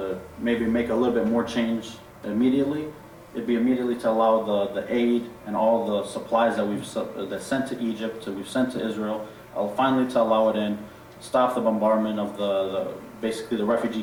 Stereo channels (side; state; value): both; identical; correlation 1.00